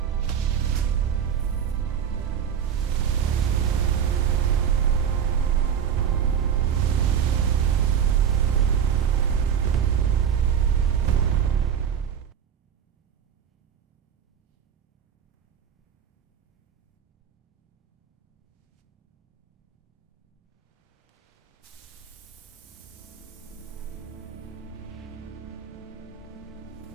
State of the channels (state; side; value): quieter; left; 8.2 dB